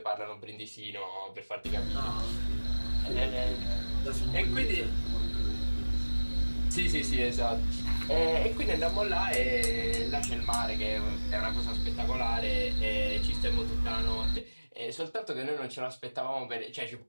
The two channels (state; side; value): inverted; both; correlation -1.00